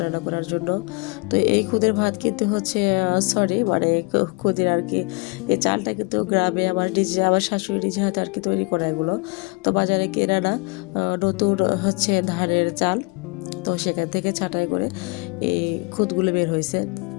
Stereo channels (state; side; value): quieter; right; 28.5 dB